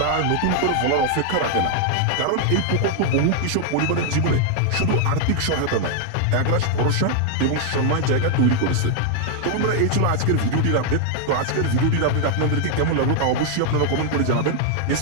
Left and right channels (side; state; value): both; different; correlation 0.00